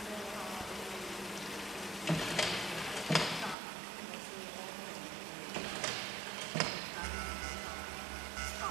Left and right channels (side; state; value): left; drops out; at 3.6 s